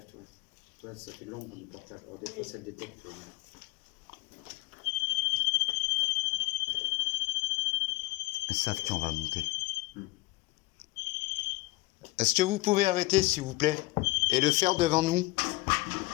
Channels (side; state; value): right; quieter; 21.0 dB